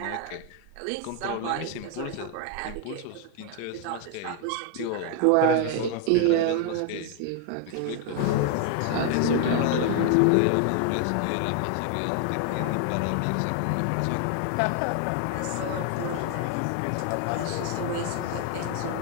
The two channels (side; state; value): both; different; correlation 0.01